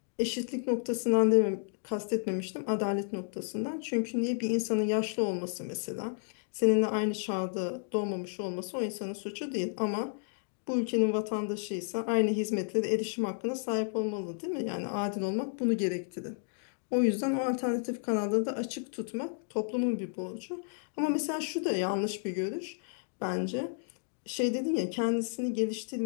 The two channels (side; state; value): right; silent; digital silence